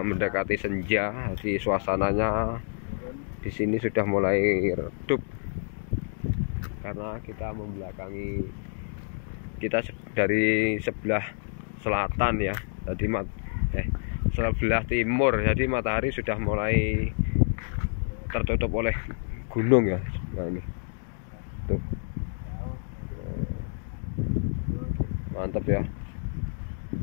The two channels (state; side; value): silent; right; digital silence